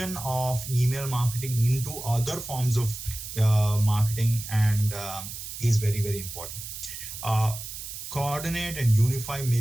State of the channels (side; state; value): right; noise; hiss, 9 dB below the sound